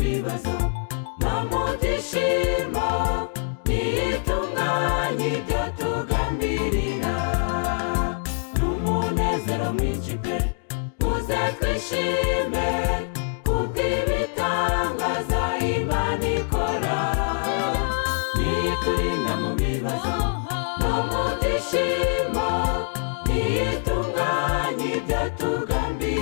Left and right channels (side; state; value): right; silent; 62 dB below the other